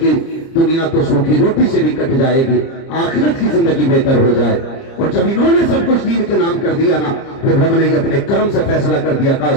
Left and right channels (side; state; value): right; late; 30 ms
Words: دنیا تو سوکھی روٹی سے بھی کٹ جائے گی، آخرت کی زندگی بہتر ہو جائے، اور جب انہوں نے سب کچھ دین کے نام کر دیا نا، پھر رب نے یہ اپنے کرم سے فیصلہ کر دیا، کہا